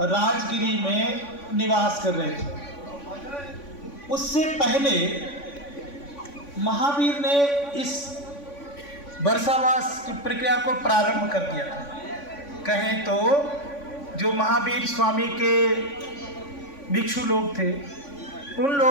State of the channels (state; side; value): late; right; 3.5 ms